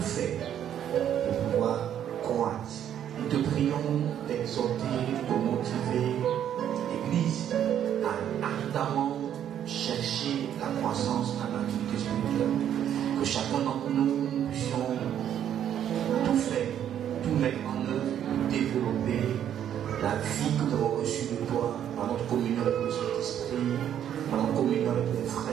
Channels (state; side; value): quieter; left; 10.0 dB